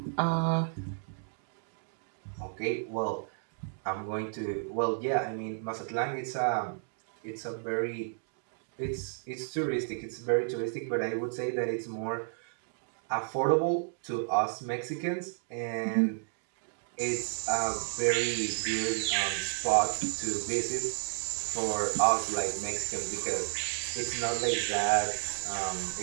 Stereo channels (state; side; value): silent; left; digital silence